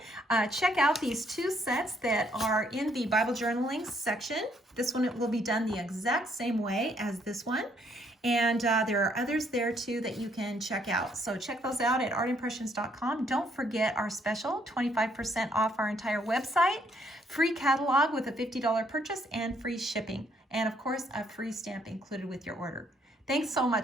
Check out these two sets that are in the Bible journaling section. This one will be done the exact same way as this one. And there are others there too that you can check out. So check those out at artimpressions.com. Don't forget our special, 25% off our entire website, free catalog with a $50 purchase, and free shipping. And of course, a free stamp included with your order. Thanks so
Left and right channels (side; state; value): both; normal; correlation 0.69